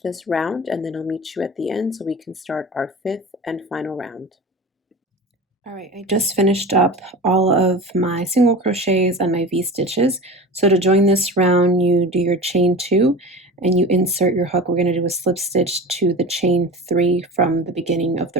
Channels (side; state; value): both; normal; correlation 0.33